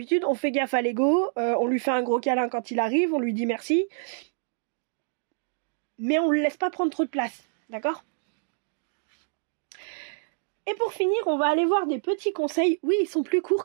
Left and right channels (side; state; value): left; silent; digital silence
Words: on fait gaffe à l'ego, on lui fait un gros câlin quand il arrive, on lui dit merci. Mais on ne le laisse pas prendre trop de place, d'accord? Et pour finir, on va aller voir des petits conseils. Oui, ils sont plus courts